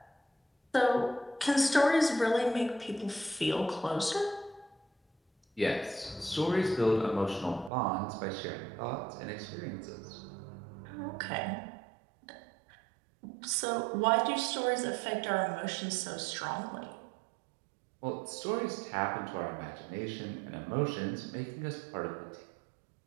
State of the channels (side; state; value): left; drops out; at 7.7 s